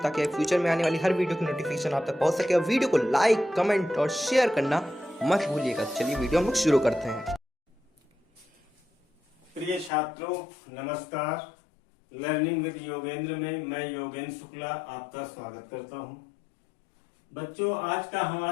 फ्यूचर में आने वाली हर वीडियो की नोटिफिकेशन आप तक पहुंच सके। और वीडियो को लाइक, कमेंट और शेयर करना मत भूलिएगा। चलिए वीडियो हम लोग शुरू करते हैं। प्रिय छात्रों नमस्कार। लर्निंग विद योगेंद्र में मैं योगेंद्र शुक्ला आपका स्वागत करता हूं। बच्चों, आज का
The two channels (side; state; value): right; drops out; at 9.9 s